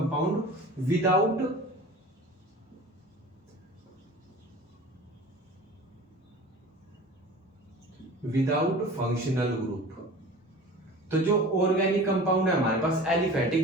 without functional group. तो जो ऑर्गेनिक कंपाउंड है हमारे पास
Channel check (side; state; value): both; normal; correlation 0.39